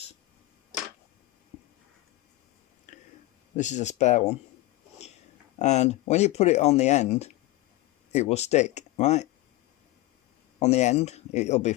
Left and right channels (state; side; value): quieter; right; 18.3 dB